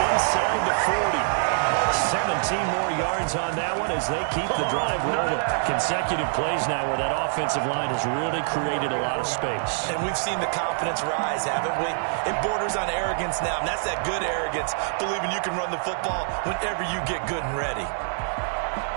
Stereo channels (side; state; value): left; silent; 56 dB below the other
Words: the 40. 17 more yards on that one as they keep the drive rolling. Consecutive plays now where that offensive line has really created a lot of space. And we've seen the confidence rise, haven't we? It borders on arrogance now, and that's that good arrogance, believing you can run the football whenever you get good and ready.